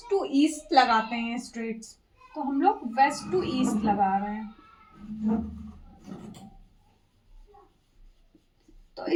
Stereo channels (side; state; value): both; identical; correlation 1.00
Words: टू ईस्ट लगाते हैं स्ट्रेट्स, तो हम लोग वेस्ट टू ईस्ट लगा रहे हैं। तो